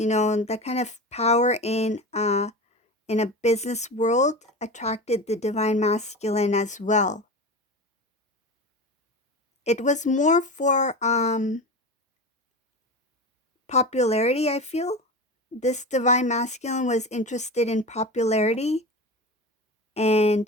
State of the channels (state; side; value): normal; both; correlation 0.27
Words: kind of power in a business world attracted the divine masculine as well. It was more for popularity, I feel. This divine masculine was interested in popularity